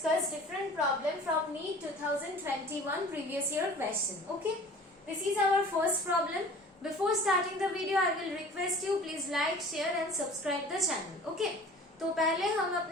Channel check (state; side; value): normal; both; correlation 0.45